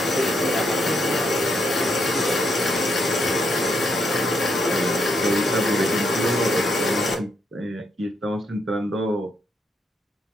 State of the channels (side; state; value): both; normal; correlation 0.77